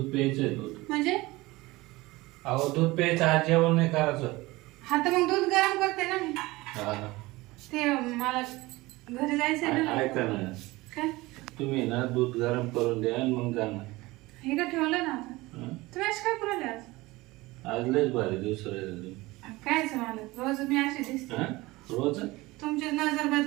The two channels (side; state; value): left; quieter; 20.7 dB